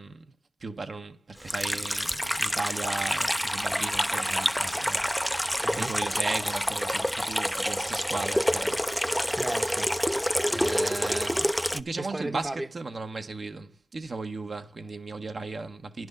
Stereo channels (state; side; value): normal; both; correlation 0.98